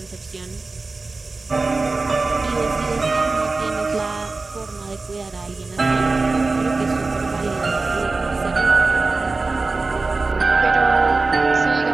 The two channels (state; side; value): quieter; left; 3.7 dB